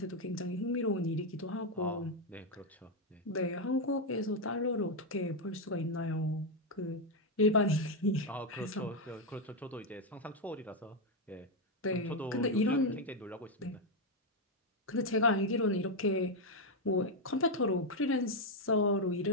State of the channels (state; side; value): normal; both; correlation 0.03